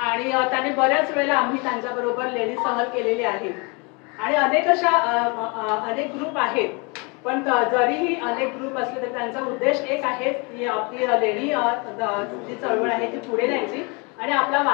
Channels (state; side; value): quieter; right; 30.8 dB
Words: त्याने बऱ्याच वेळेला आम्ही त्यांच्याबरोबर लेणी सहल केलेली आहे आणि अनेक ग्रुप आहेत. पण जरीही अनेक ग्रुप असले तरी त्यांचा उद्देश एक आहे की आपली लेणी जी चळवळ आहे ती पुढे न्यायची आणि आपला